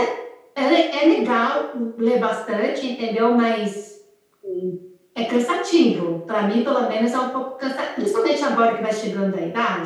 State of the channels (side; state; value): both; identical; correlation 1.00